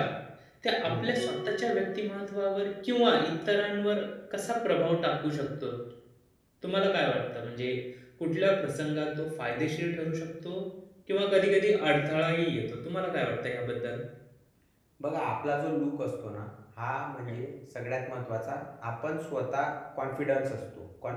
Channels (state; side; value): identical; both; correlation 1.00